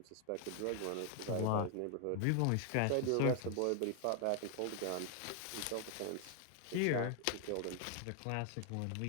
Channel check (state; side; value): different; both; correlation 0.00